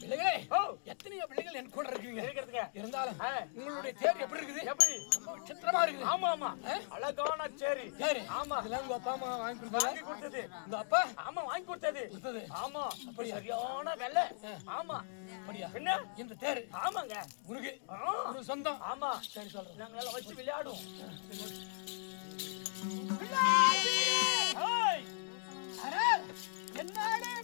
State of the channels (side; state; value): right; silent; digital silence